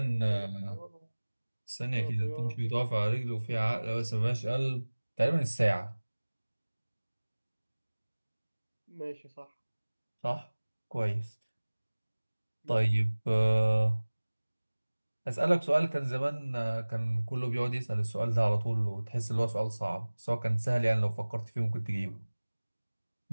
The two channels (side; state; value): both; inverted; correlation -1.00